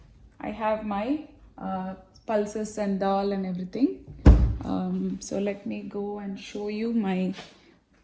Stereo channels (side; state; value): both; identical; correlation 1.00